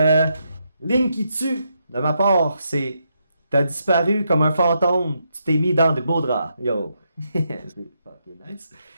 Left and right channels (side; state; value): both; inverted; correlation -0.80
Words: Ligne qui tue, de ma part, c'est t'as disparu comme un fantôme, tu t'es mis dans des beaux draps. Yo. C'est fucking nice.